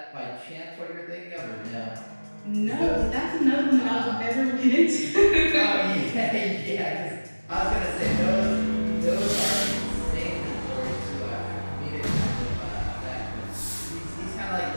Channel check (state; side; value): inverted; both; correlation -1.00